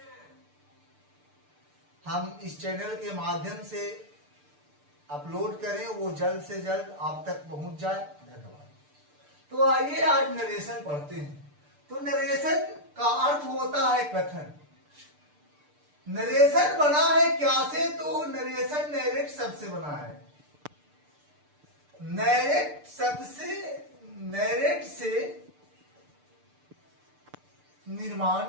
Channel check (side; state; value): left; late; 6.7 ms